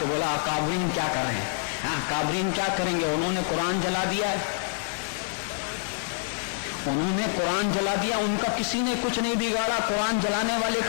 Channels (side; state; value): right; silent; 60 dB below the other